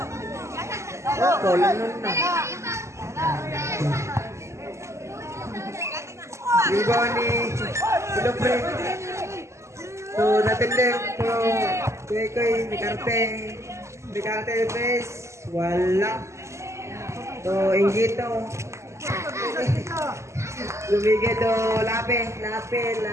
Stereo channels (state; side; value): late; left; 0.13 ms